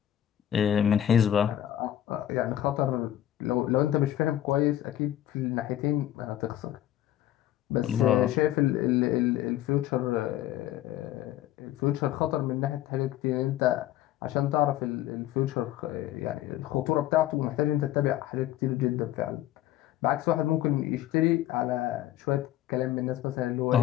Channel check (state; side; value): quieter; right; 12.8 dB